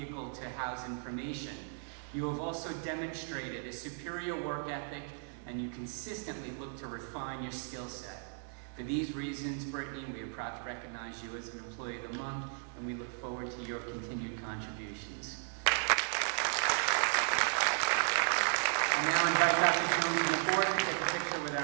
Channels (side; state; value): left; silent; 54 dB below the other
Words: to house information. You have also demonstrated a superior work ethic, and you consistently look to refine your skill set. For these reasons, Brittany, we are proud to recognize you as an Employee of the Month, and we look forward to your continued contributions. I now invite Dr. Jones to the board to take a picture with